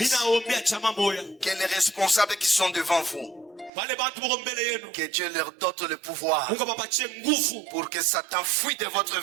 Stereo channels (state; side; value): drops out; left; at 3.7 s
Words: les responsables qui sont devant vous, que Dieu leur donne le pouvoir pour que Satan fuit de votre